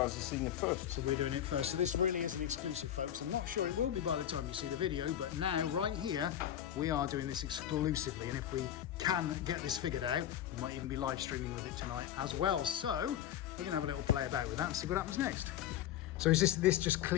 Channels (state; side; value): quieter; right; 11.0 dB